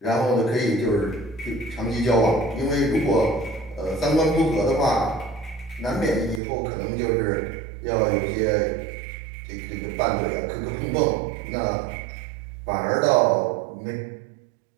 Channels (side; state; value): left; drops out; at 6.4 s